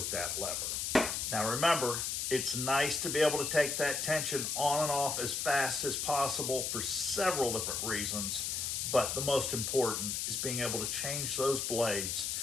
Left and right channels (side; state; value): left; noise; hiss, 1 dB below the sound